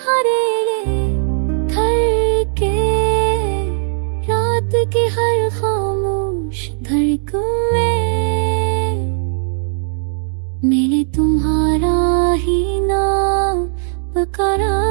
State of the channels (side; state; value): left; silent; digital silence